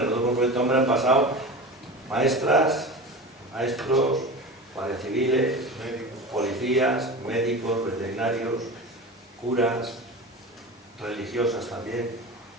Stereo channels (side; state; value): both; normal; correlation 0.30